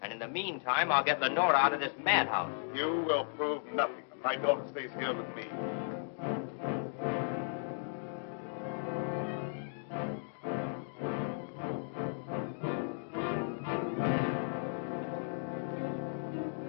And in the meantime, I'll get Lenora out of this madhouse. You will prove nothing. My daughter stays here with me.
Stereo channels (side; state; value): right; silent; digital silence